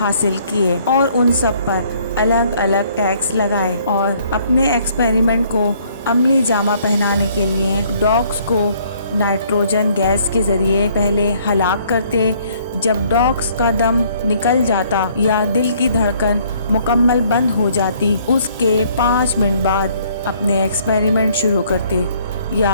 کیے اور ان سب پر الگ الگ ٹیگز لگائے، اور اپنے ایکسپیریمنٹ کو عملی جامہ پہنانے کے لیے ڈاگس کو نائٹروجن گیس کے ذریعے پہلے ہلاک کرتے، جب ڈاگز کا دم نکل جاتا یا دل کی دھڑکن مکمل بند ہو جاتی اس کے 5 منٹ بعد اپنے ایکسپیریمنٹ شروع کرتے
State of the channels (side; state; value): both; inverted; correlation -0.63